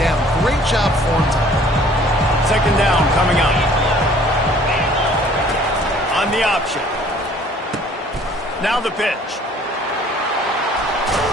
Great job for him. Second down coming up. On the option. Now the pitch.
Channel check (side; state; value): both; normal; correlation 0.55